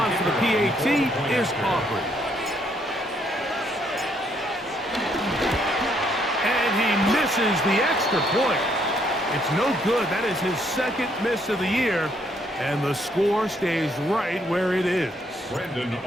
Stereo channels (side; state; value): both; normal; correlation 0.70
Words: for the PAT is Aubrey. And he misses the extra point. It's no good. That is his second miss of the year, and the score stays right where it is. Brandon